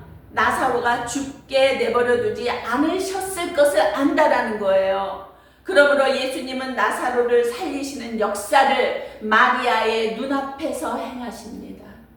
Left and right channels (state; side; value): identical; both; correlation 1.00